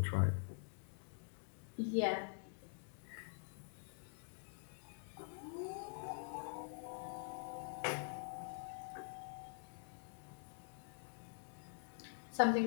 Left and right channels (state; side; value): silent; right; digital silence